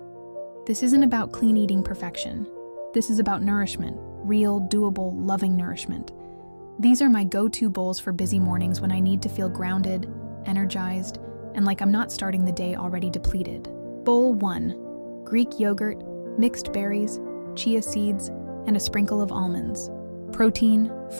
This isn't about clean eating perfection. This is about nourishment, real, doable, loving nourishment. These are my go-to bowls for busy mornings when I need to feel grounded, energized, and like I'm not starting the day already depleted. Bowl 1. Greek yogurt, mixed berries, chia seeds, and a sprinkle of almonds. Protein,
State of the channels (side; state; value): both; inverted; correlation -1.00